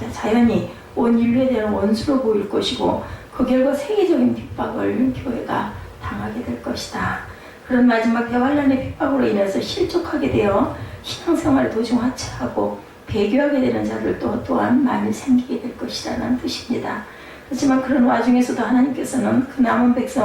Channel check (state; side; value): identical; both; correlation 1.00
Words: 자연히 온 인류에 대한 원수로 보일 것이고, 그 결과 세계적인 핍박을 교회가 당하게 될 것이다. 그런 마지막 대환란의 핍박으로 인해서 실족하게 되어 신앙생활을 도중 하차하고 배교하게 되는 자들 또한 많이 생기게 될 것이라는 뜻입니다. 하지만 그런 와중에서도 하나님께서는 그 남은